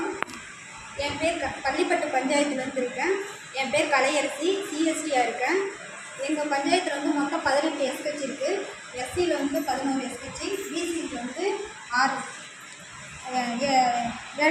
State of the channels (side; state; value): both; identical; correlation 1.00